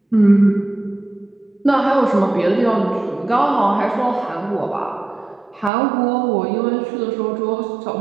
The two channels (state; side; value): drops out; left; at 5.7 s